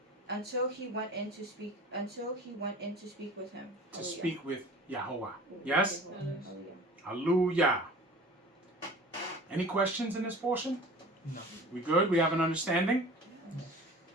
until he went in to speak with him. To speak with Yahweh. Yes? Hallelujah. Hallelujah. Any questions in this portion? No. We good? We have an understanding?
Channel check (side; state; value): both; normal; correlation 0.42